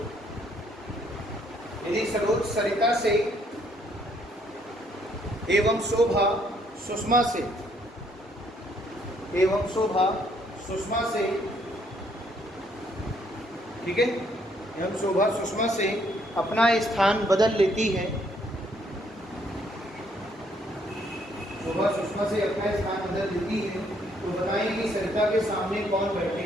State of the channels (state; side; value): normal; both; correlation 0.68